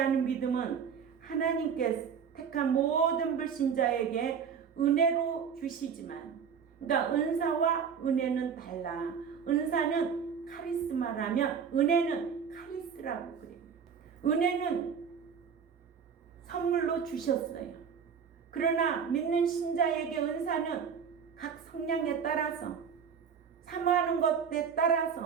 믿음은 하나님께 택한 모든 불신자에게 은혜로 주시지만 그러니까 은사와 은혜는 달라. 은사는 카리스마라면 은혜는 카리스라고 그래요. 은혜는 선물로 주셨어요. 그러나 믿는 신자에게 은사는 각 성향에 따라서 사모하는 것에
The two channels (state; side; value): quieter; left; 6.9 dB